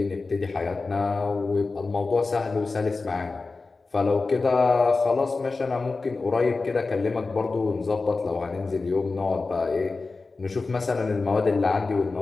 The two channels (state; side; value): quieter; right; 3.8 dB